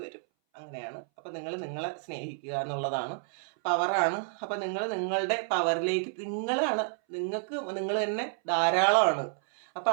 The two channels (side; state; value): left; silent; 58 dB below the other